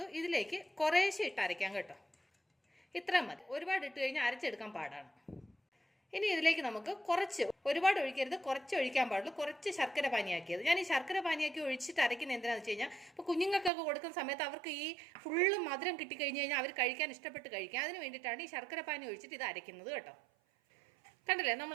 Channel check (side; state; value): left; drops out; at 13.7 s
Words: ഇതിലേക്ക് കുറേശ്ശെ ഇട്ട് അരയ്ക്കാം കേട്ടോ. ഇത്ര മതി, ഒരുപാട് ഇട്ട് കഴിഞ്ഞാൽ അരച്ചെടുക്കാൻ പാടാണ്. ഇനി ഇതിലേക്ക് നമുക്ക് കുറച്ച്, ഒരുപാട് ഒഴിക്കരുത്, കുറച്ച് ഒഴിക്കാൻ പാടുള്ളൂ. കുറച്ച് ശർക്കര പാനിയാക്കിയത്. ഞാൻ ഈ ശർക്കര പാനിയാക്കി ഒഴിച്ചിട്ട് അരയ്ക്കുന്നത് എന്തിനാണെന്ന് വെച്ച് കഴിഞ്ഞാൽ ഇപ്പോൾ കുഞ്ഞുങ്ങൾക്കൊക്കെ കൊടുക്കുന്ന സമയത്ത് അവർക്ക് ഈ ഫുള്ള് മധുരം കിട്ടിക്കഴിഞ്ഞ് കഴിഞ്ഞാൽ അവർ കഴിക്കാൻ ഇഷ്ടപ്പെട്ട് കഴിക്കാം. അതിന് വേണ്ടിയിട്ടാണ് ഈ ശർക്കര പാനി ഒഴിച്ചിട്ട് ഇത് അരയ്ക്കുന്നത് കേട്ടോ. കണ്ടില്ലേ,